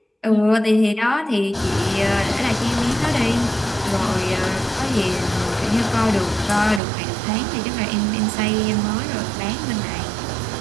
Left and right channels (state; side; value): drops out; left; at 6.8 s